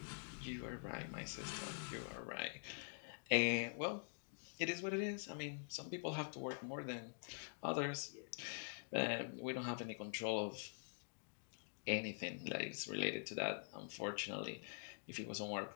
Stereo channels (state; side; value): silent; right; digital silence